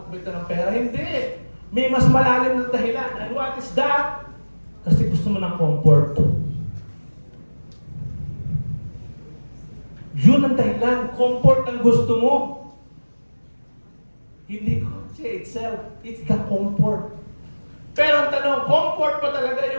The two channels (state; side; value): inverted; both; correlation -1.00